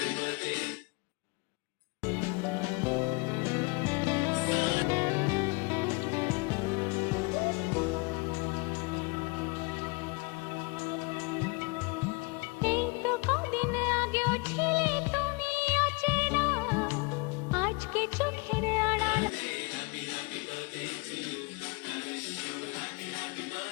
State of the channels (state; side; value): quieter; right; 28.7 dB